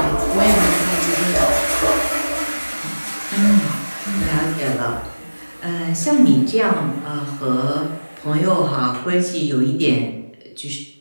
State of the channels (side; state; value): both; inverted; correlation -1.00